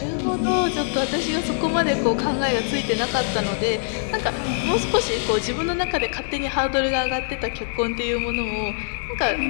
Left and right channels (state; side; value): silent; right; 63 dB below the other